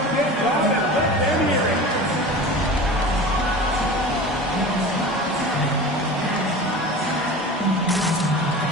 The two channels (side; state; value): both; normal; correlation 0.35